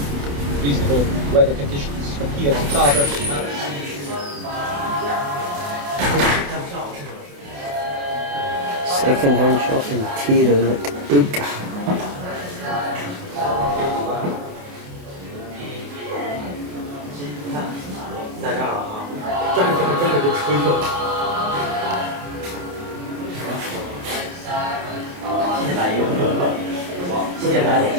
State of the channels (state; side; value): late; left; 28 ms